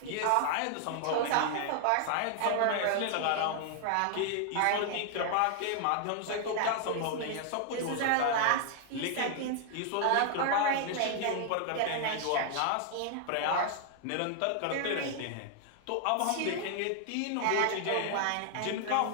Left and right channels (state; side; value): different; both; correlation 0.00